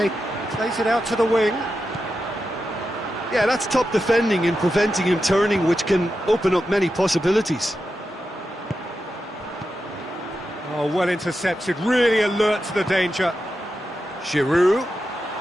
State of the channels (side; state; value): both; normal; correlation 0.89